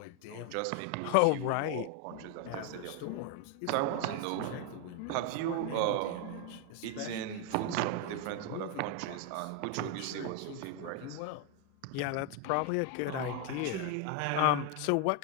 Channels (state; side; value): different; both; correlation 0.01